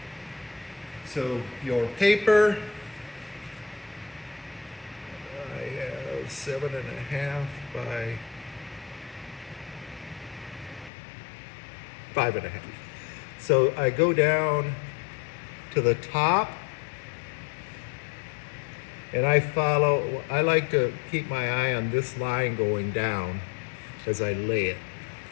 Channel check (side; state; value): right; drops out; at 10.9 s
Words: So your paper, I have 7.5 by 5.5. So I go down to the top, and I like to keep my eye on this line going down as I lay it.